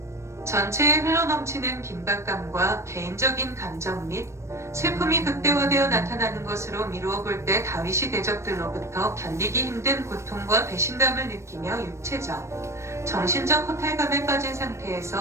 전체에 흘러넘치는 긴박감과 개인적인 감정 및 슬픔이 극대화되어 나타나는 것으로 미루어 볼 때 다윗이 대적들로부터 견디기 힘든 고통과 배신감을 느끼며 육체적, 정신적 허탈감에 빠진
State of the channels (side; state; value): left; late; 0.13 ms